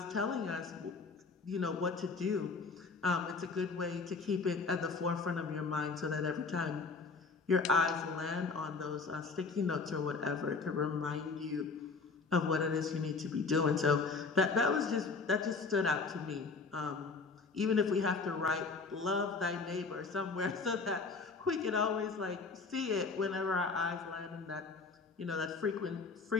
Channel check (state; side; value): quieter; right; 4.4 dB